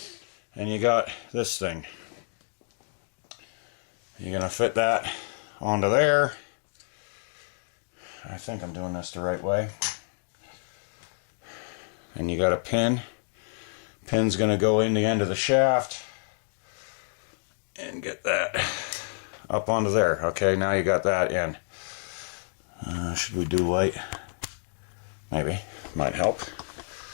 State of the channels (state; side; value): silent; right; digital silence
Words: And you got this thing. You're gonna fit that onto there. I think I'm doing this the right way. And you got a pin. Pin's gonna go in the end of the shaft and get that up onto there. Okay, now you got that in. Should we do light? Maybe. Might help.